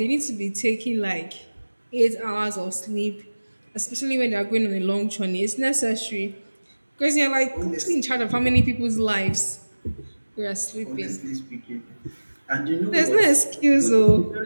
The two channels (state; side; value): inverted; both; correlation -1.00